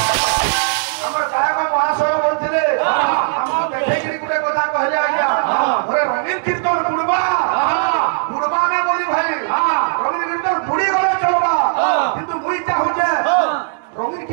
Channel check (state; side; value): silent; left; digital silence